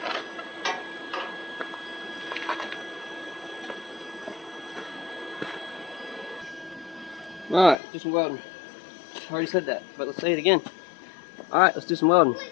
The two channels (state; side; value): drops out; right; at 7.8 s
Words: Alright, do some welding. I already said that, but let's say it again. Alright, let's do some welding.